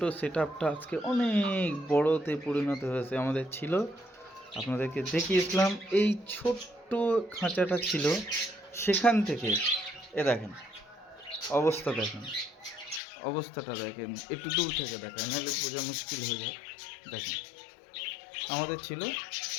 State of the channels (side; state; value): right; drops out; at 13.0 s